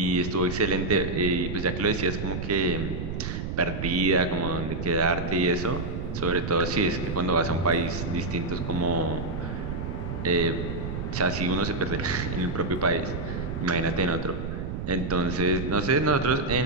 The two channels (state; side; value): noise; right; rumble, 4 dB below the sound